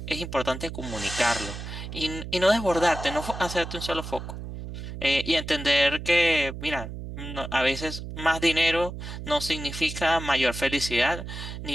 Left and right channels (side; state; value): right; noise; hum, 9 dB below the sound